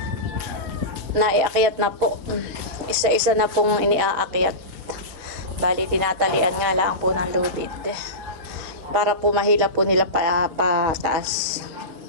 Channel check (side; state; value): left; late; 6.3 ms